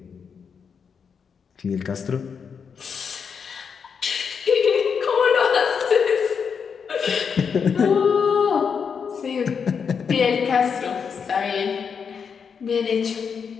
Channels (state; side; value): quieter; right; 6.4 dB